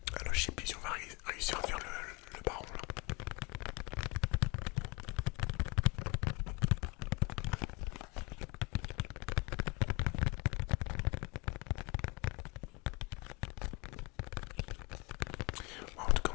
Alors, je sais plus si on va réussir à faire le baron là. Bon, en tout cas,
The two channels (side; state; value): right; quieter; 26.7 dB